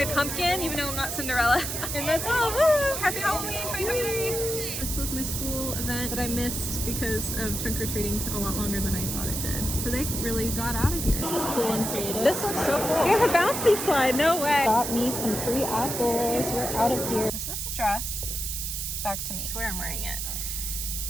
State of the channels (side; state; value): right; noise; hiss, 3 dB below the sound